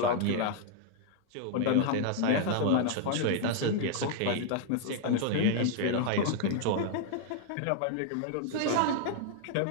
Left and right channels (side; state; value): both; different; correlation 0.00